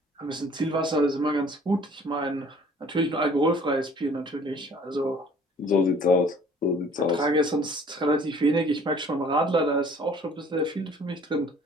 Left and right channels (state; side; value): normal; both; correlation 0.53